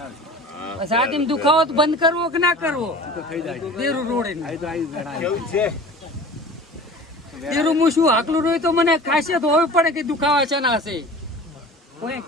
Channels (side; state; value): both; normal; correlation 0.39